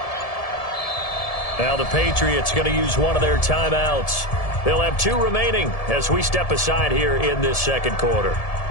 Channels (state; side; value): late; right; 1.7 ms